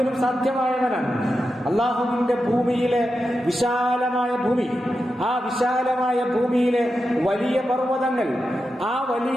സാധ്യമായവനാണ്. അള്ളാഹുവിന്റെ ഭൂമിയിലെ വിശാലമായ ഭൂമി, ആ വിശാലമായ ഭൂമിയിലെ വലിയ പർവ്വതങ്ങൾ, ആ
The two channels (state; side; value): normal; both; correlation 0.89